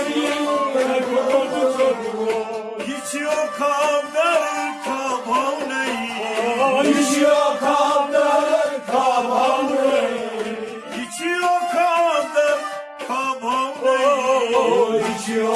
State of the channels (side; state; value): both; identical; correlation 1.00